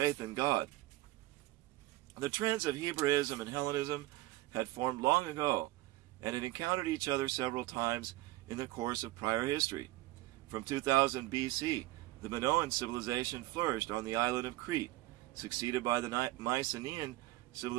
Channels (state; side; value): quieter; left; 17.8 dB